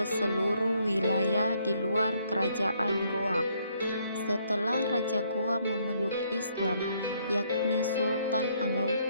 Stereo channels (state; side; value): inverted; both; correlation -0.69